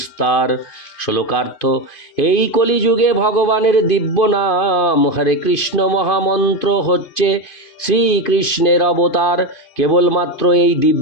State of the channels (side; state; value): right; late; 2.5 ms